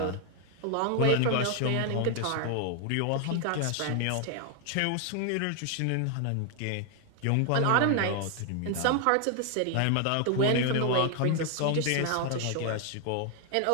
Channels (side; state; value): both; different; correlation 0.00